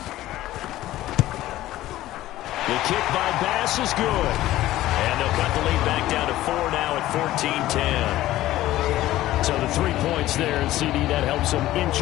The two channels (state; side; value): quieter; right; 15.2 dB